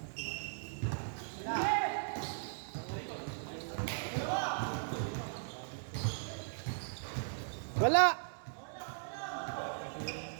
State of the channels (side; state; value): left; silent; digital silence